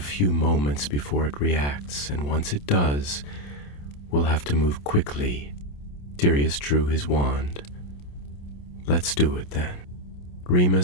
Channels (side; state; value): right; late; 28 ms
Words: few moments before it reacts, and once it does, we'll have to move quickly." Sirius drew his wand. "Let's do it then."